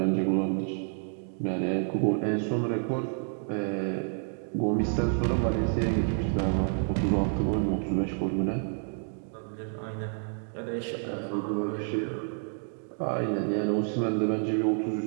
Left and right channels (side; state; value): left; silent; 58 dB below the other